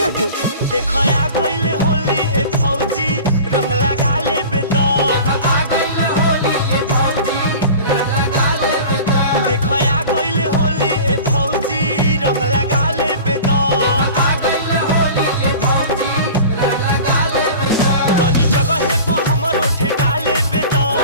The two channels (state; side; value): inverted; both; correlation -0.38